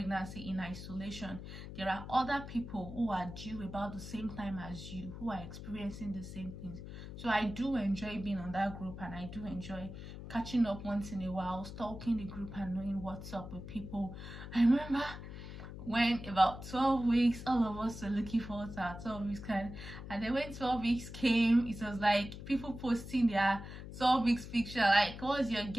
in isolation. There are other people who are due about the same time as you, who are experiencing the same things. So I do enjoy being on that group, and I do enjoy catching up once in a while, stalking the group and knowing what's up with people. I remember when about 12 weeks, all of us were looking forward to our 12 weeks kind, and then when 12 weeks came, it was like people posting their 12 weeks picture, like, what's your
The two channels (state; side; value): noise; left; hum, 11 dB below the sound